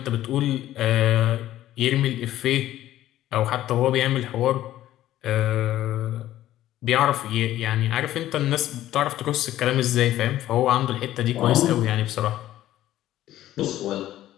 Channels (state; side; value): quieter; right; 13.7 dB